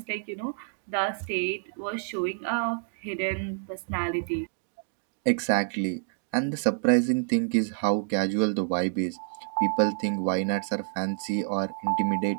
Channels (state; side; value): silent; left; digital silence